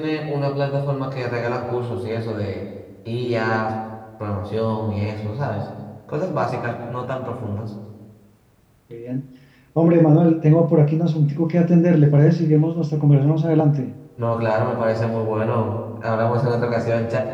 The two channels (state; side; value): identical; both; correlation 1.00